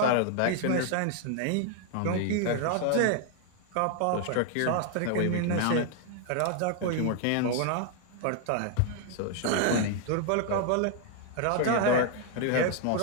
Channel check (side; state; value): both; different; correlation 0.00